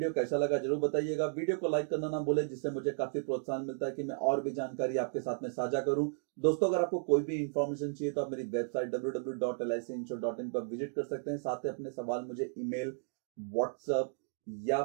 कैसा लगा जरूर बताइएगा। वीडियो को लाइक करना ना भूलें, जिससे मुझे काफी प्रोत्साहन मिलता है कि मैं और भी जानकारी आपके साथ में साझा करूं। दोस्तों, अगर आपको कोई भी इंफॉर्मेशन चाहिए तो आप मेरी वेबसाइट www.licinsure.in पर विजिट कर सकते हैं। साथ ही अपने सवाल मुझे ईमेल, व्हाट्सएप या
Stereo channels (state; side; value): silent; left; digital silence